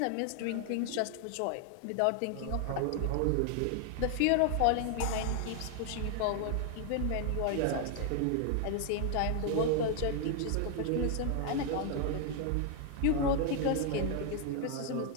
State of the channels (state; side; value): different; both; correlation 0.00